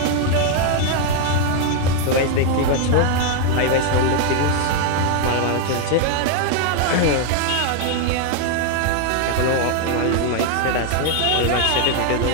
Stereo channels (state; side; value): different; both; correlation 0.00